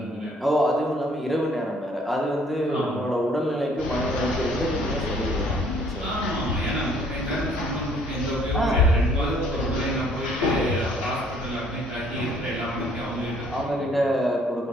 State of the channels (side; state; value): both; normal; correlation 0.61